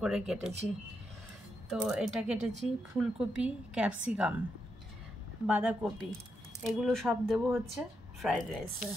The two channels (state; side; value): normal; both; correlation 0.83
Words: করে কেটেছি। তো এটা কেটেছি, ফুলকপি, ক্যাপসিকাম, বাঁধাকপি, এগুলো সব দেবো হচ্ছে ফ্রাইড রাইসে,